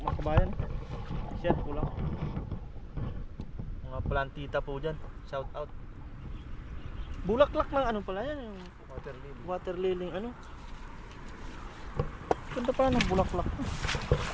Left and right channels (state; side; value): identical; both; correlation 1.00